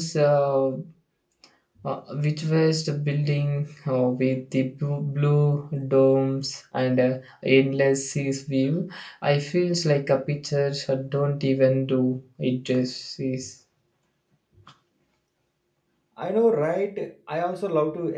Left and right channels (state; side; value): identical; both; correlation 1.00